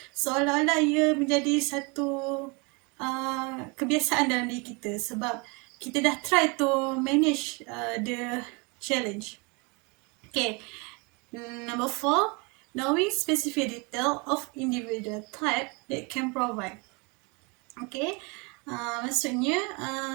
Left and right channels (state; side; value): quieter; left; 30.2 dB